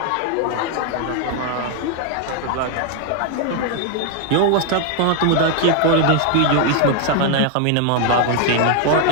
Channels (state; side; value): different; both; correlation 0.01